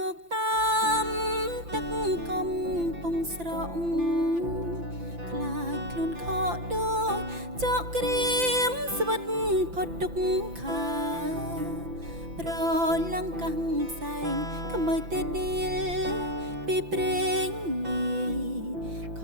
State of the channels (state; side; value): late; left; 5.9 ms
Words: ុកតាមទឹកកំពង់ស្រក់ខ្លាចខ្លួនខកដូចចកក្រៀមស្វិតផុតទុកខាប្រឡាំងកាំងផ្សែងក្មើតែឌីលពីព្រេងនាយខ